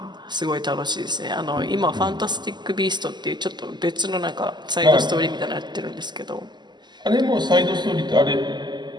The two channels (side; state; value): left; late; 0.21 ms